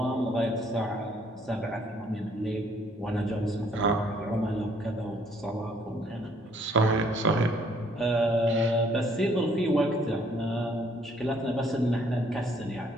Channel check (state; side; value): normal; both; correlation 0.64